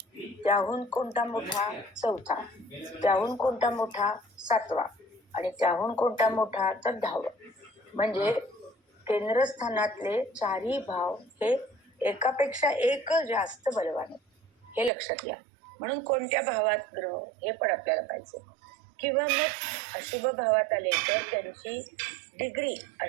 त्याहून कोणता मोठा? चौथा, त्याहून कोणता मोठा? 7वा, आणि त्याहून कोणता मोठा? तर 10वा. म्हणजे केंद्रस्थानातले चारही भाव हे एकापेक्षा एक जास्त बलवान आहेत, हे लक्षात घ्या. म्हणून कोणत्या भावात ग्रह हे पण आपल्याला पाहिजे. किंवा मग अशुभ भावात आले तर त्यांची डिग्री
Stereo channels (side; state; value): left; drops out; at 14.9 s